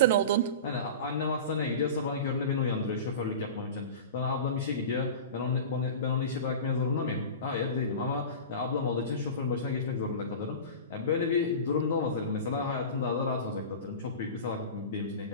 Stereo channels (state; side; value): inverted; both; correlation -0.31